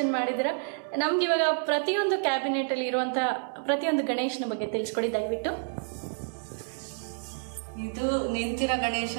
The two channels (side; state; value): left; silent; digital silence